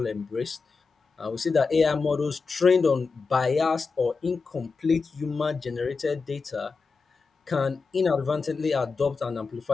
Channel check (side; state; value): right; quieter; 4.6 dB